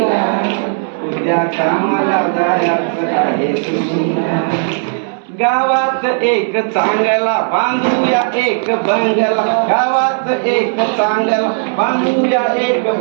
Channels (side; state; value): left; silent; 70 dB below the other